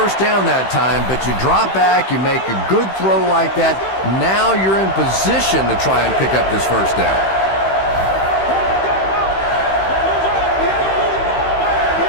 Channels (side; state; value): right; late; 15 ms